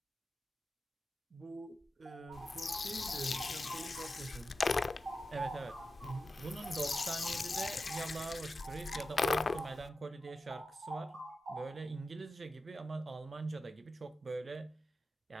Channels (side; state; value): both; normal; correlation 0.91